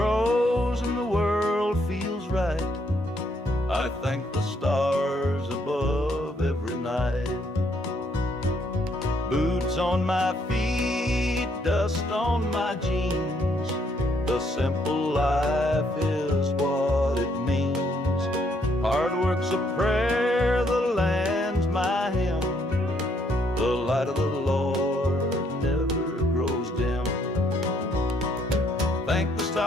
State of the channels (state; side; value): normal; both; correlation 0.70